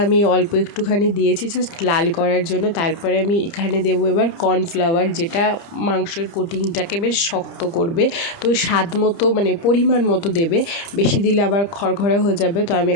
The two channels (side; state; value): right; late; 30 ms